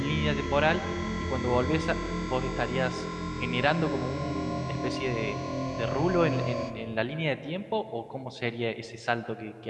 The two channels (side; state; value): both; identical; correlation 1.00